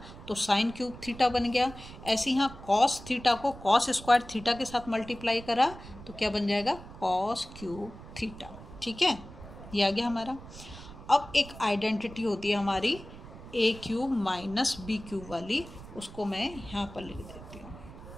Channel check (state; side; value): noise; right; rumble, 15 dB below the sound